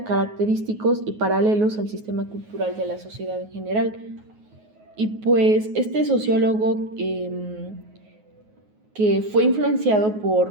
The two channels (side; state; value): left; late; 9.4 ms